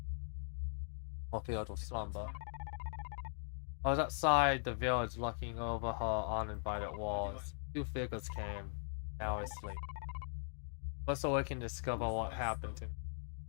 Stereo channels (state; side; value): silent; right; digital silence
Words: or filled with slumber. I was outside the village looking over her uninvited walls. Two figures came. Now I sleep. But so I can discover what happened to me.